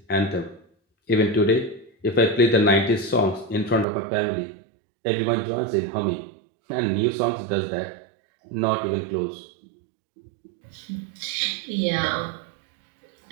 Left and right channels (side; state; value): left; drops out; at 3.9 s